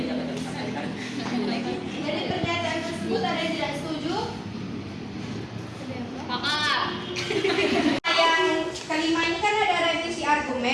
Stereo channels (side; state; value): both; identical; correlation 1.00